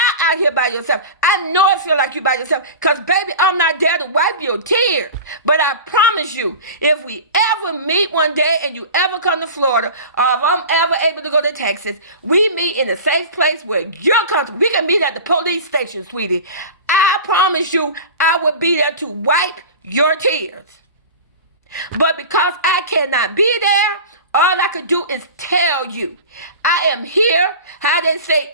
out here by yourself. I know I feel like you're by yourself, because baby, I'm not there to wipe your tears. But I promise you, if we ever meet one day and you ever come to Florida, or if I'm ever able to go to Texas, we meet in a safe place where you're comfortable. We can meet at the police station, sweetie. I promise you, I will be there to wipe your tears. But because I cannot be there, all I could do is tell you, I am here, how they say,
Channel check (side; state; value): both; inverted; correlation -0.33